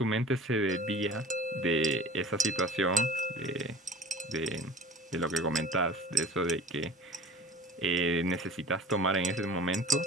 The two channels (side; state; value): both; normal; correlation 0.41